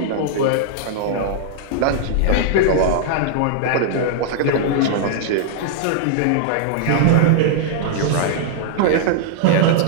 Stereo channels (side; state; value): both; different; correlation -0.01